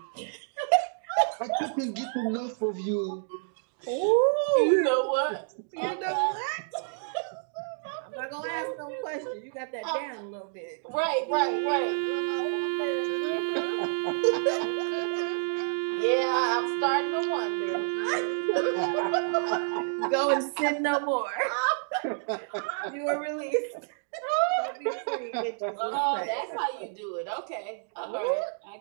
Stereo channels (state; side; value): silent; left; digital silence